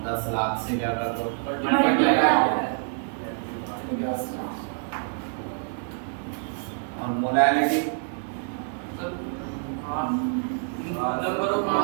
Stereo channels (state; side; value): silent; left; 60 dB below the other